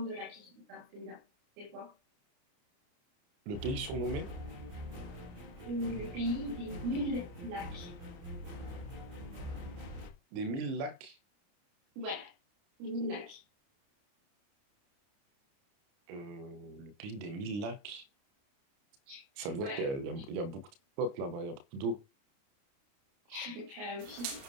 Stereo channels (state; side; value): late; left; 29 ms